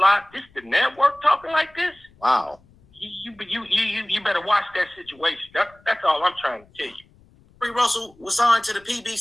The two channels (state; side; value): noise; left; rumble, 29 dB below the sound